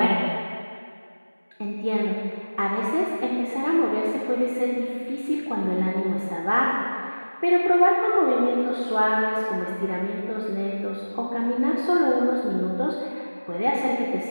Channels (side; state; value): both; inverted; correlation -1.00